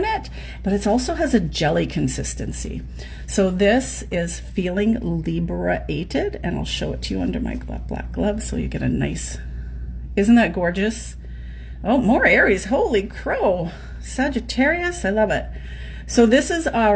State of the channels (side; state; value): both; identical; correlation 1.00